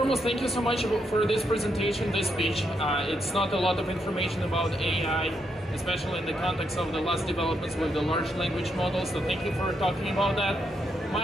thank you so much for this presentation, this speech. It's not a lot of information about AI, especially in the context of the last developments with the large language models, so thank you for talking about that.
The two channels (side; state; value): both; normal; correlation 0.79